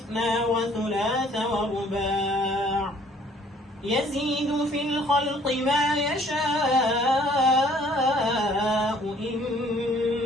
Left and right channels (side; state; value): both; normal; correlation 0.59